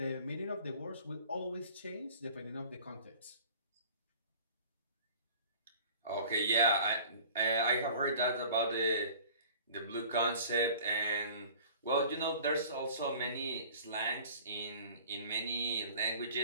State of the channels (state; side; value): inverted; both; correlation -0.46